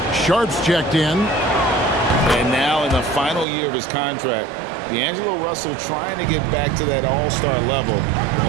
Sharp's checked in. And now in the final year of his contract, D'Angelo Russell trying to get back to that all-star level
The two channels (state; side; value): drops out; left; at 3.5 s